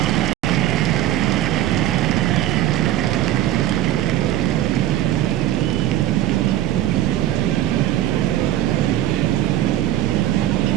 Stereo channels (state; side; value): quieter; left; 13.1 dB